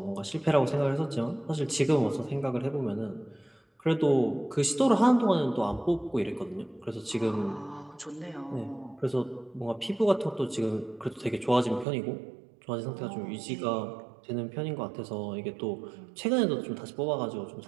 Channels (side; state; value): left; drops out; at 11.9 s